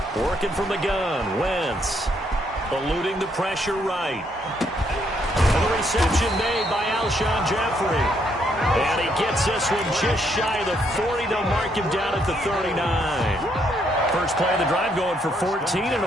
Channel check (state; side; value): normal; both; correlation 0.73